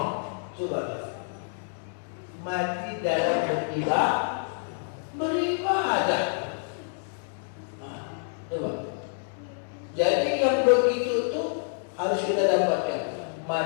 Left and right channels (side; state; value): right; silent; digital silence